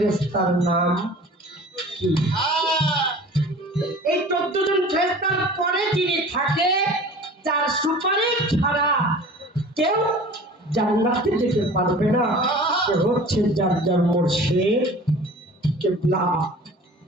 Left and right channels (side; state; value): both; normal; correlation 0.43